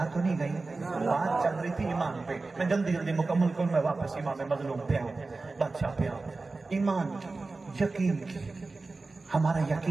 تو نہیں گئی؟ بات چل رہی تھی ایمان پہ, میں جلدی جلدی مکمل کروں, میں واپس امام مظلوم پہ آؤں, بادشاہ پہ آؤں. ایمان کی, یقین کی, ہمارا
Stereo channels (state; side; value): quieter; left; 3.6 dB